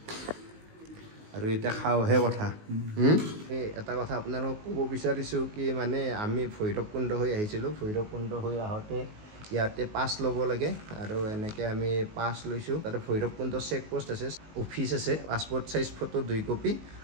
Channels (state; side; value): late; left; 19 ms